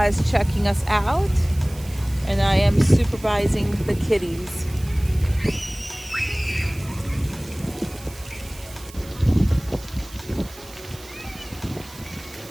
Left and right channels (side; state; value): right; noise; hiss, 19 dB below the sound